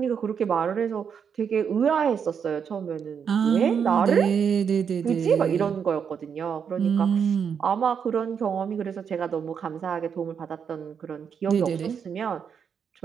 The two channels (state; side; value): quieter; left; 7.1 dB